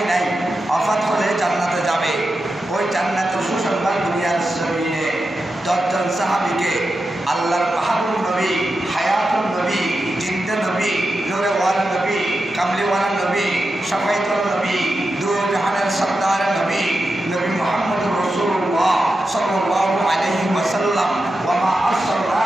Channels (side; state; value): both; normal; correlation 0.90